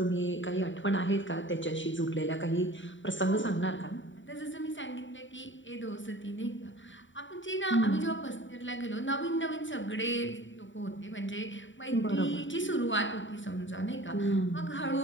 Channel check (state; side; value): late; right; 0.55 ms